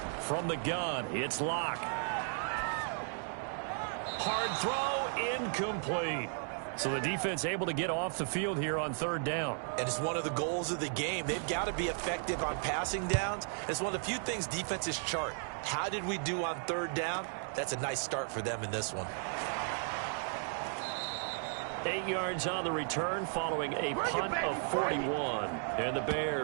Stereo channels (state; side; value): silent; left; 54 dB below the other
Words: From the gun, it's Locke. Hard throw, incomplete. So the defense able to get off the field here on 3rd down. And it's one of the goals of the game. They've got to be effective on passing downs. It's one of the few things defenses chart. How did we do on 3rd down? That's a nice start for them in this one. 8 yards on the return following a punt of 41. And the